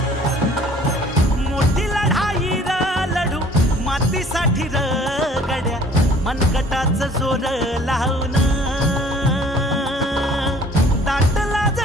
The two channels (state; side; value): normal; both; correlation 0.53